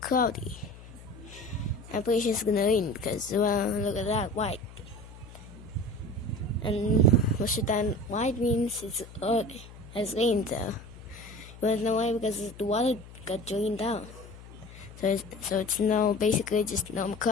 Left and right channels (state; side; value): noise; left; hum, 17 dB below the sound